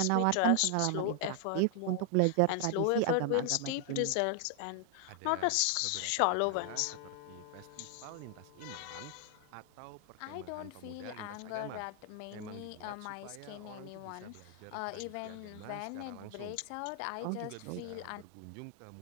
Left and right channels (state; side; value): different; both; correlation 0.00